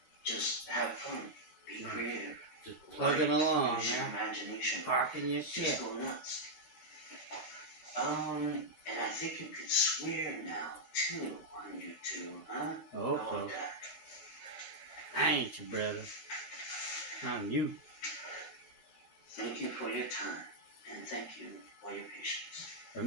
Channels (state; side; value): late; right; 12 ms